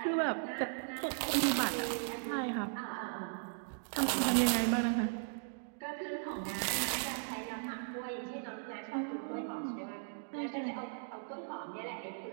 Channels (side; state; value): left; silent; digital silence